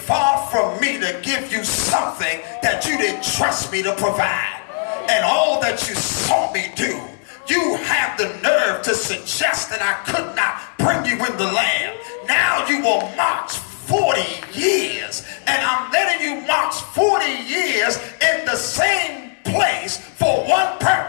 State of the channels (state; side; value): silent; right; digital silence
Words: from me to give you something that you didn't trust me to provide. And all that you saw me do, you have the nerve to suggest that I could not bring you in the land. Now you will march 40 years. And I'm letting you march 40 years in the same place for one